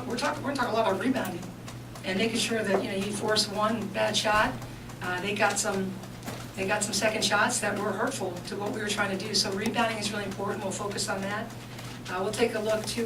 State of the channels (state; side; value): identical; both; correlation 1.00